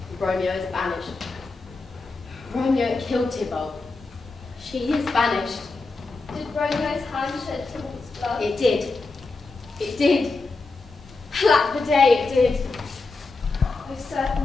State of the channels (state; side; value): quieter; right; 3.7 dB